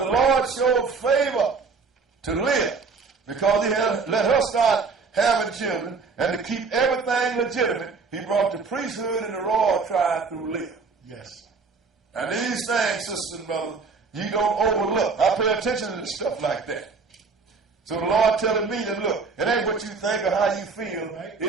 Lord showed favor to Leah because he had let her start having children, and to keep everything legitimate, he brought the priesthood and the royal tribe through Leah. Yes. And these things, sisters and brothers, you don't overlook. I pay attention to stuff like that. So the Lord telling me that, look, it ain't what you think or how you feel. Right.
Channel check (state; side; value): quieter; left; 4.7 dB